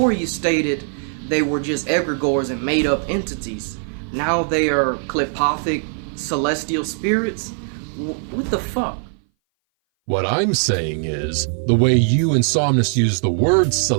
you stated they were just egregores and made-up entities. Now they are klepothic celestial spirits? What the fuck? What I'm saying is, the way you and Somnus use the word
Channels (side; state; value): left; silent; 59 dB below the other